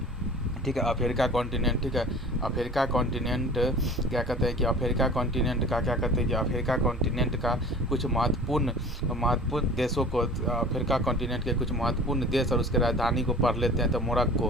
ठीक है, अफ्रीका कॉन्टिनेंट, ठीक है, अफ्रीका कॉन्टिनेंट क्या कहते हैं कि अफ्रीका कॉन्टिनेंट का क्या कहते हैं कि अफ्रीका कॉन्टिनेंट का कुछ महत्वपूर्ण देशों को, अफ्रीका कॉन्टिनेंट के कुछ महत्वपूर्ण देश और उसके राजधानी को पढ़ लेते हैं। तो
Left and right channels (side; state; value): both; normal; correlation 0.42